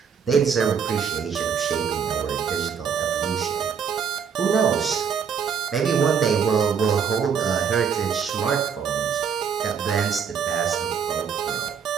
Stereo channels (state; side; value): quieter; left; 6.9 dB